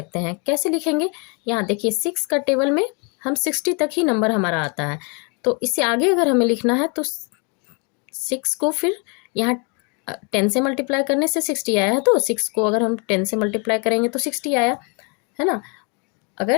हैं। कैसे लिखेंगे? यहाँ देखिए 6 का टेबल में हम 60 तक ही नंबर हमारा आता है, तो इससे आगे अगर हमें लिखना है तो 6 को फिर यहाँ 10 से मल्टीप्लाई करने से 60 आया है, तो 6 को अगर हम 10 से मल्टीप्लाई करेंगे तो 60 आया, है ना।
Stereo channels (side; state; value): right; quieter; 34.3 dB